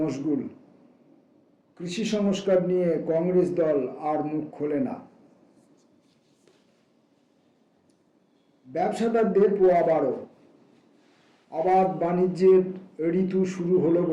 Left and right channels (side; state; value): both; identical; correlation 1.00